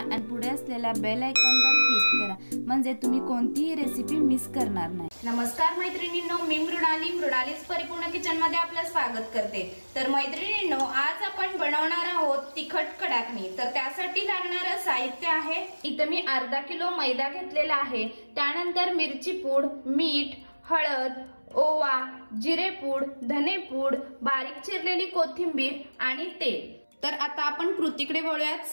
पुढे असलेल्या बेल आयकॉनवर क्लिक करा, म्हणजे तुम्ही कोणतीही रेसिपी मिस करणार नाही। नमस्कार मैत्रिणींनो, मी मृणालीस परिपूर्ण किचन मध्ये आपलं स्वागत करते। तर मैत्रिणींनो, आज आपण बनवणार आहोत तिखट कडाकणी। तर त्यासाठी लागणारे साहित्य आहे, इथे मी अर्धा किलो मैदा घेतलेला आहे, त्यानंतर मिरची पूड, मीठ, हळद, ओवा, जिरेपूड, धनेपूड, बारीक चिरलेली कोथिंबीर आणि तेल। तर आता आपण कृतीकडे वळूयात।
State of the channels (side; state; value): both; inverted; correlation -1.00